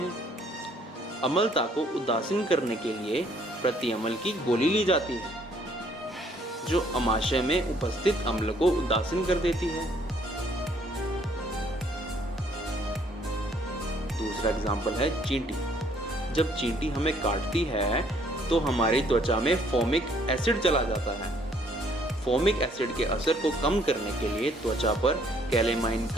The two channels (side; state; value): both; normal; correlation 0.64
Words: अम्लता को उदासीन करने के लिए प्रति अम्ल की गोली ली जाती है, जो आमाशय में उपस्थित अम्ल को उदासीन कर देती है। दूसरा एग्जाम्पल है चींटी। जब चींटी हमें काटती है तो हमारी त्वचा में फोमिक एसिड चला जाता है। फोमिक एसिड के असर को कम करने के लिए त्वचा पर कैलेमाइन